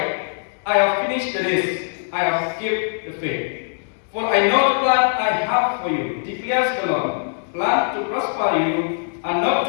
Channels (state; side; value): silent; right; digital silence